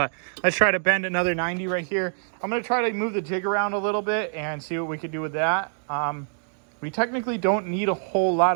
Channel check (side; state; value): left; silent; digital silence